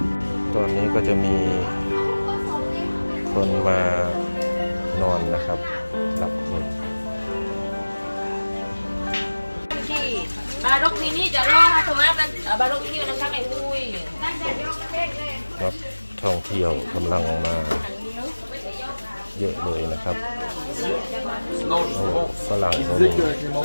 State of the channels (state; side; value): inverted; both; correlation -1.00